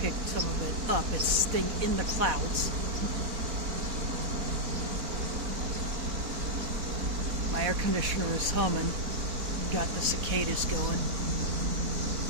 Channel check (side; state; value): left; late; 4.1 ms